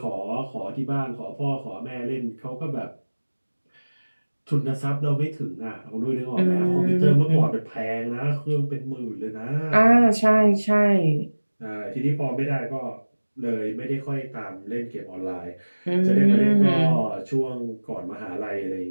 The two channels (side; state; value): both; inverted; correlation -1.00